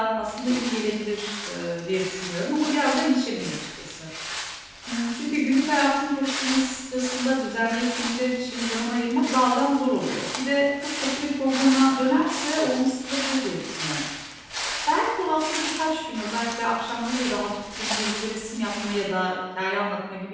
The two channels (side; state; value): both; identical; correlation 1.00